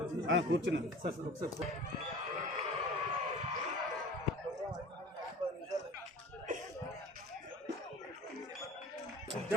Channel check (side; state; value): both; normal; correlation 0.41